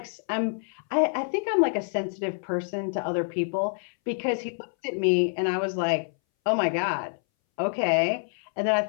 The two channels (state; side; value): silent; right; 60 dB below the other